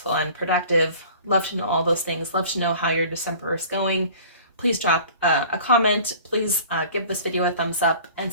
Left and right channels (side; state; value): both; inverted; correlation -0.46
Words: and productive? Love to know all those things. Love to know how your December is going. Please drop a comment. Please give this video a thumbs up and